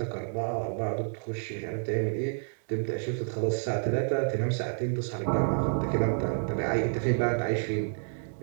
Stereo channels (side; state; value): left; silent; digital silence